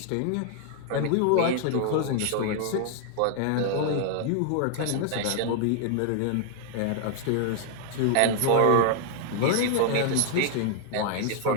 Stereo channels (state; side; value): different; both; correlation 0.00